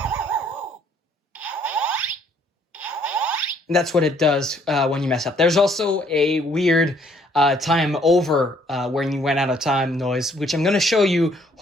And that's what it does when you mess up. There's also a weird time over when you went out of time noise, which I'm going to show you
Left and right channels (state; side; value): normal; both; correlation 0.64